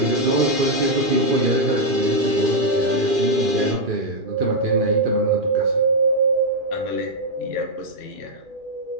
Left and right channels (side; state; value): left; late; 2.4 ms